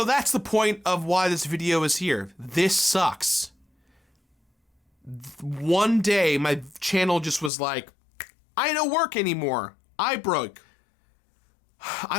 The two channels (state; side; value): drops out; right; at 7.5 s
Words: that's the point of why this video is here. This sucks. One day, my channel just was like, I don't work anymore. I broke.